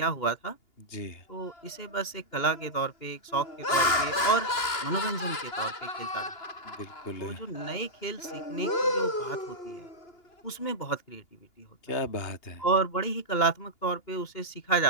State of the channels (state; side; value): late; right; 2.8 ms